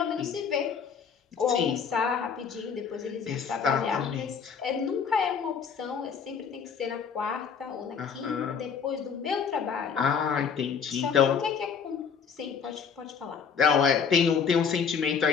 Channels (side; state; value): right; quieter; 6.5 dB